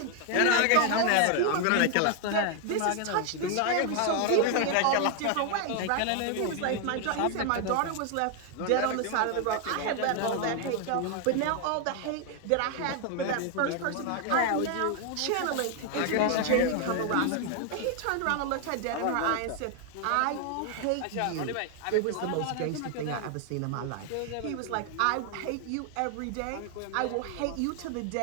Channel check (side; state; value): both; different; correlation 0.00